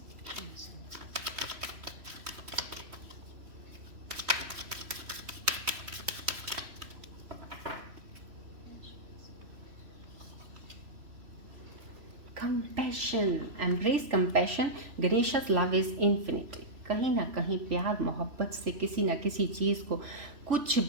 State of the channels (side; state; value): left; late; 3.1 ms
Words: Compassion, embrace compassion. Ganesha's love is infinite. कहीं ना कहीं प्यार मोहब्बत से किसी ना किसी चीज़ को कुछ